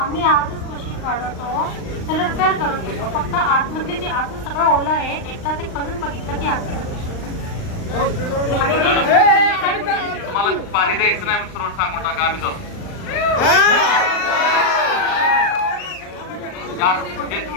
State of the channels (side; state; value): right; late; 39 ms